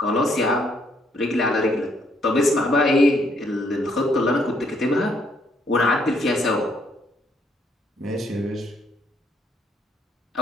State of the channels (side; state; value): both; normal; correlation 0.70